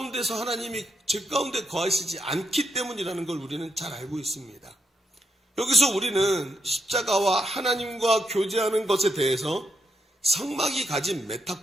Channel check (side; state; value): both; normal; correlation 0.80